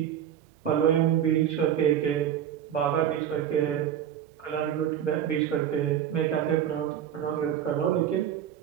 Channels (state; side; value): quieter; left; 9.9 dB